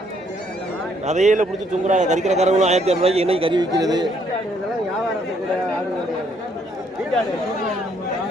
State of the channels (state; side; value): normal; both; correlation 0.68